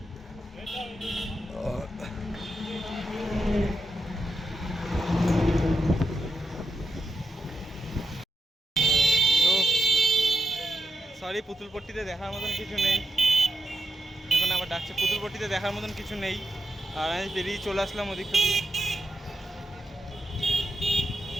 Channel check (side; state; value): both; normal; correlation 0.86